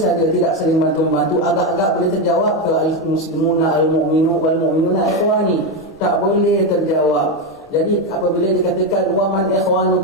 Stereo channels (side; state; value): both; normal; correlation 0.10